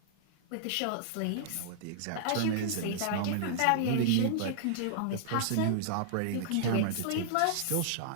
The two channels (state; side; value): different; both; correlation -0.01